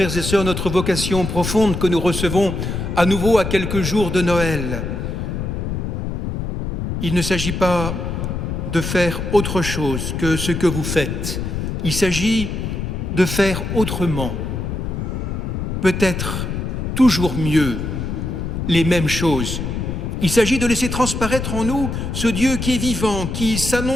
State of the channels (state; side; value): noise; left; rumble, 3 dB below the sound